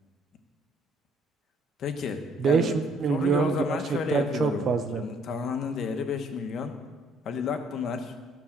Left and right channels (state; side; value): normal; both; correlation 0.63